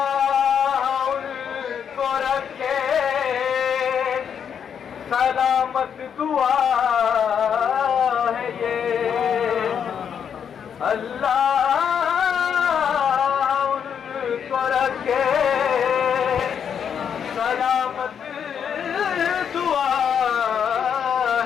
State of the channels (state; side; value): quieter; right; 7.8 dB